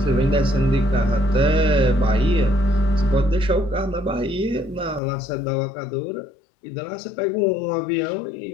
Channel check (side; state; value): right; drops out; at 5.0 s